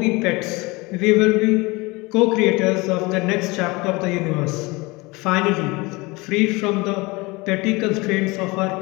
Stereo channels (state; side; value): quieter; right; 24.2 dB